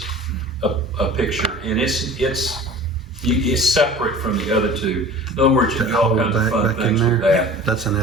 a picture, and it's separate from the other 2. In other words, you can do all kinds of fun Back in things with there, that. that's an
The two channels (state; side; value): normal; both; correlation 0.41